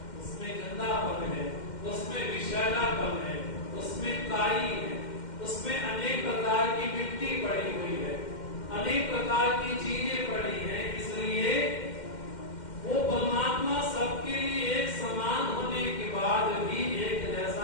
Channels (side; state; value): right; late; 2.1 ms